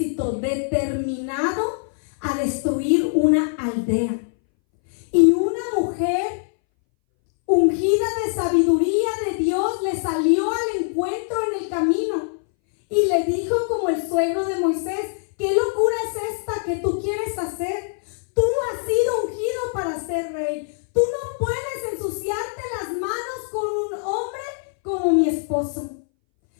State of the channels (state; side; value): silent; right; 61 dB below the other